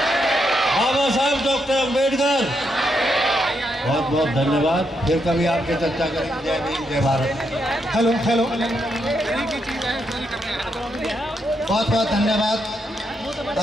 Baba Saheb doctor Ambedkar. बहुत बहुत धन्यवाद। फिर कभी आपके चर्चा करेंगे। जय भीम, जय भारत। Hello hello. बहुत बहुत धन्यवाद।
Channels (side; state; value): both; normal; correlation 0.80